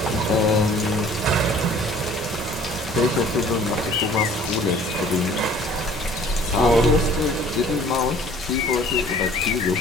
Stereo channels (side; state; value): both; normal; correlation 0.52